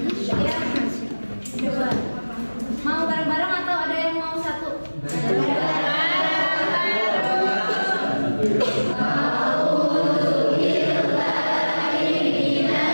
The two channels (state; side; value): inverted; both; correlation -1.00